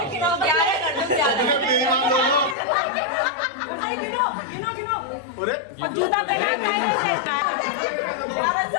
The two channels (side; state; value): right; drops out; at 2.6 s